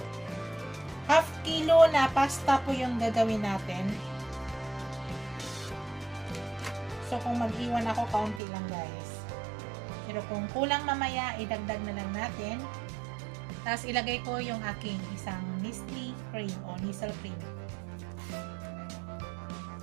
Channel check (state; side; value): drops out; left; at 8.4 s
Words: Half kilo na pasta po yung gagawin natin. So kung mag-iwan ako, kaunti lang guys. Pero kung kulang mamaya, idagdag na lang natin. Tapos ilagay ko yung aking isang Nestle cream o Nestle cream.